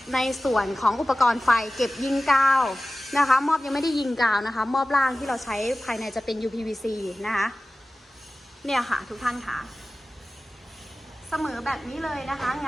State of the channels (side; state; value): both; normal; correlation 0.96